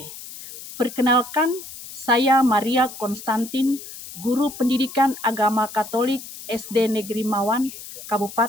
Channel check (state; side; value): noise; left; hiss, 13 dB below the sound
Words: Perkenalkan, saya Maria Konstantin, Guru Pendidikan Agama Katolik SD Negeri Mawan,